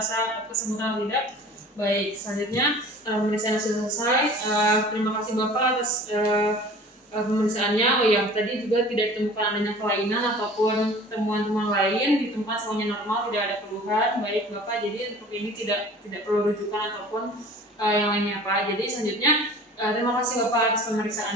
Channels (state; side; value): normal; both; correlation 0.44